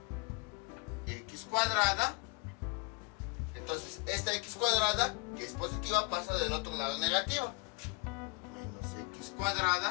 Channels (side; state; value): right; quieter; 29.3 dB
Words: x cuadrada. Entonces esta x cuadrada, que es positiva, pasa del otro lado negativa. Menos x